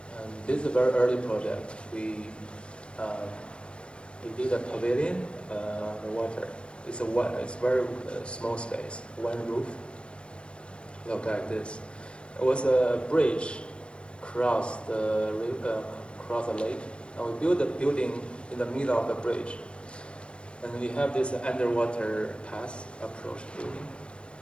And this is a very early project. We did a pavilion, the water. It's very small space, one roof. Look like this. It was a bridge across the lake, and we built a building in the middle of the bridge. And we have this underwater path approach building,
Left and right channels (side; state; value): right; late; 0.056 ms